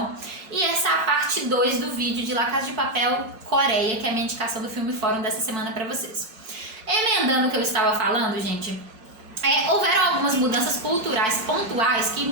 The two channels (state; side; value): late; left; 5.5 ms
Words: E essa é a parte 2 do vídeo de La Casa de Papel Coreia, que é a minha indicação do Filme Fórum dessa semana para vocês. Emendando o que eu estava falando, gente, houveram algumas mudanças culturais pontuais